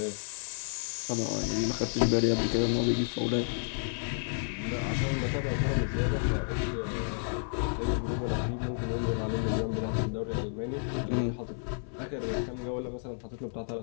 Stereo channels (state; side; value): silent; right; 57 dB below the other